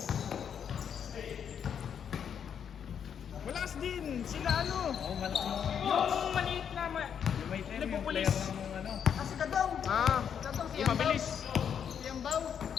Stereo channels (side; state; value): right; quieter; 8.0 dB